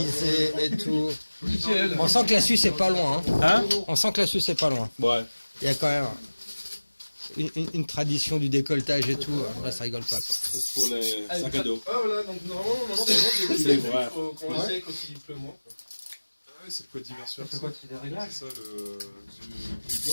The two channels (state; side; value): inverted; both; correlation -1.00